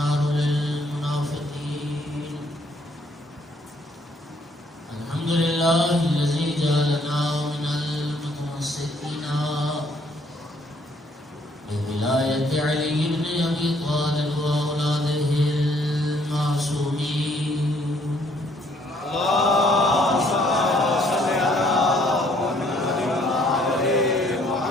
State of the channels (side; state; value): both; normal; correlation 0.65